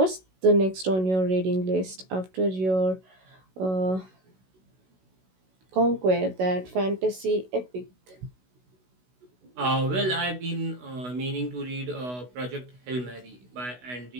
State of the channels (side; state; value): left; late; 16 ms